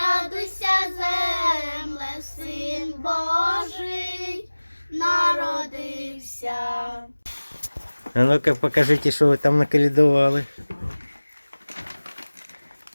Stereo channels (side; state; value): both; inverted; correlation -1.00